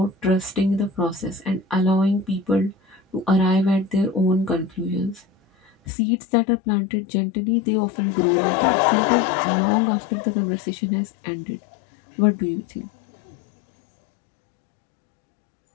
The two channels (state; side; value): drops out; right; at 5.7 s